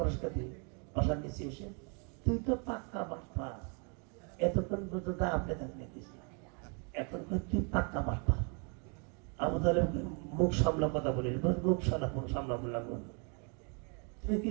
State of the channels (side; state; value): left; quieter; 36.8 dB